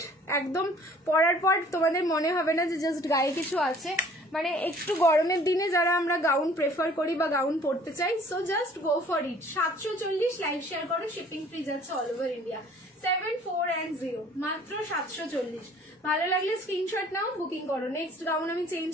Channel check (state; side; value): normal; both; correlation 0.54